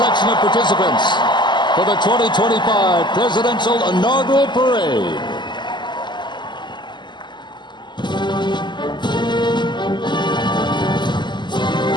of participants for the 2025 Presidential Inaugural Parade.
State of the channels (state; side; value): late; right; 0.22 ms